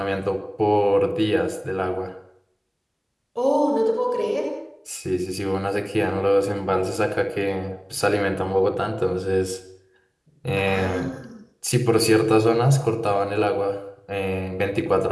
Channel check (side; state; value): both; identical; correlation 1.00